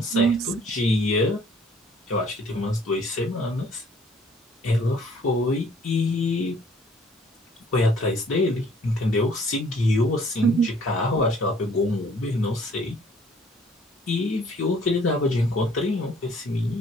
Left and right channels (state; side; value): normal; both; correlation 0.58